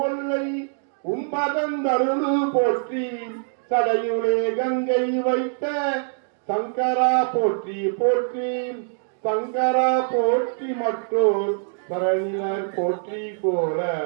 ஒல்லை உம்பதந்தருளு போற்றி சடையுளே கங்கை வைத்த சங்கரா போற்றி போற்றி சங்கரா போற்றி மற்றோர் பரணியர் போற்றி போல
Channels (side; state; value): left; silent; digital silence